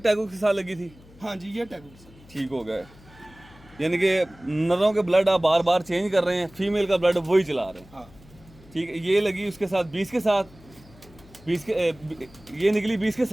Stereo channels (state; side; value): noise; left; hum, 24 dB below the sound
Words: के साथ लगी थी? हाँ जी, ये टैगो ठीक हो गया, यानी कि नरों के ब्लड आप बार बार चेंज कर रहे हैं, फीमेल का ब्लड वही चला रहे हैं, हाँ ठीक है। ये लगी उसके साथ 20 के साथ, 20 के ये निकली 20 के